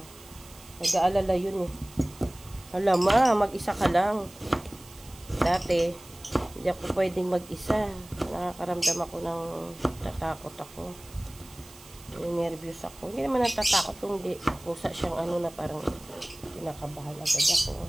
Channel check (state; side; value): noise; right; hiss, 21 dB below the sound